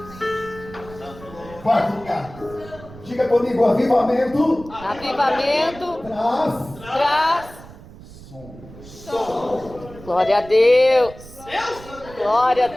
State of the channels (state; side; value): noise; right; rumble, 18 dB below the sound